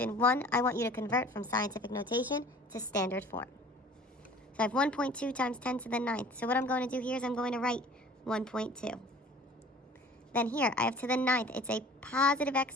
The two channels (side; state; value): both; normal; correlation 0.47